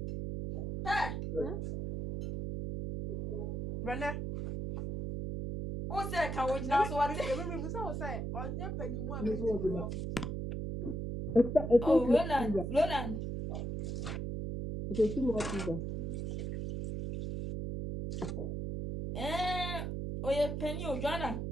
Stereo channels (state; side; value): noise; right; hum, 3 dB below the sound